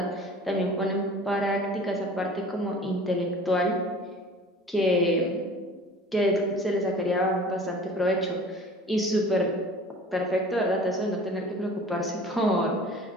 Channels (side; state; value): both; normal; correlation 0.44